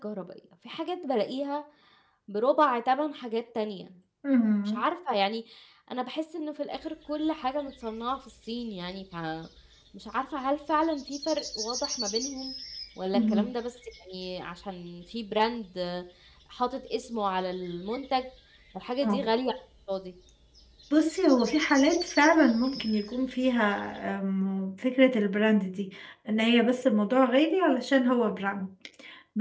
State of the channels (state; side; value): identical; both; correlation 1.00